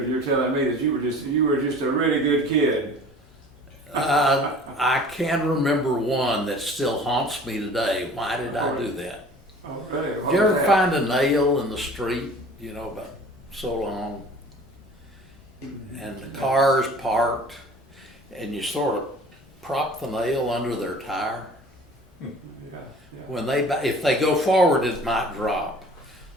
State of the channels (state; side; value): normal; both; correlation 0.46